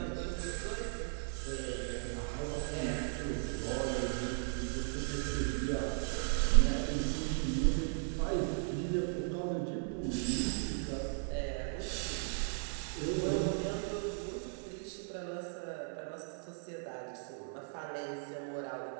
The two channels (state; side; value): silent; left; 53 dB below the other